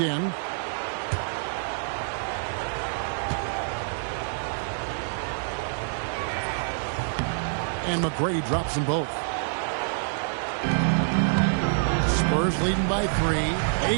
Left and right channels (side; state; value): left; silent; 55 dB below the other